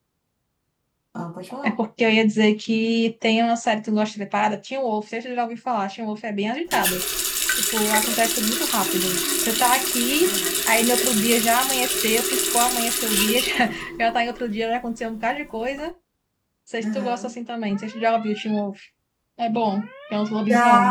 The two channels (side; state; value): both; identical; correlation 1.00